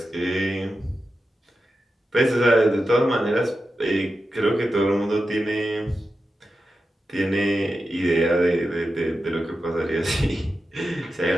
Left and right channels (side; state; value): both; normal; correlation 0.91